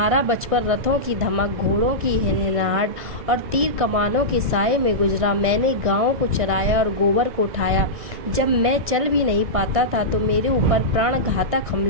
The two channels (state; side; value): late; left; 1.6 ms